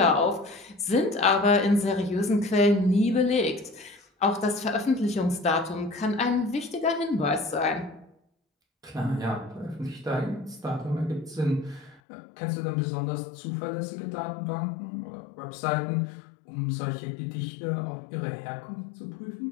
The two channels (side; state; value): right; drops out; at 12.0 s